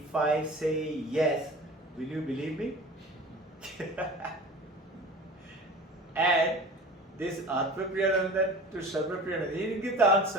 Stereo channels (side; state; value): both; normal; correlation 0.39